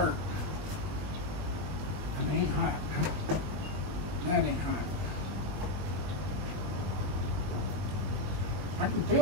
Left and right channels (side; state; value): left; late; 21 ms